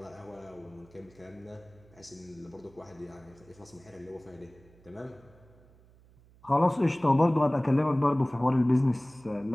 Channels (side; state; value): right; noise; hum, 27 dB below the sound